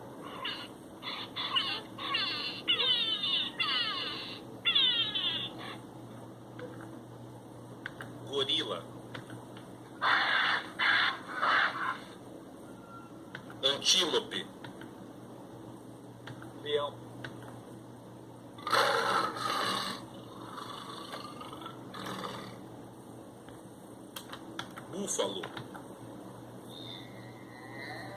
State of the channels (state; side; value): identical; both; correlation 1.00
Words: gorila, antílope, leão, búfalo,